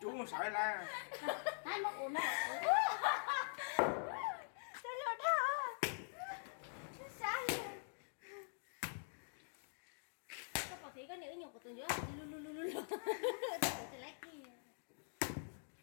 Chú không sợ la. Hai mất ổn đâu. Sao lột hả? Sao? Có thấy cái nữ nhục của tôi nữa. Lu. Tôi lấy kia.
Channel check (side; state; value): right; silent; digital silence